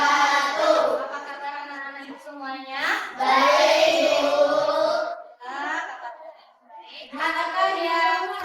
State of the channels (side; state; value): both; identical; correlation 1.00